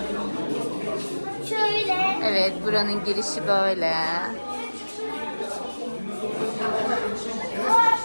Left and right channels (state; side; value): inverted; both; correlation -1.00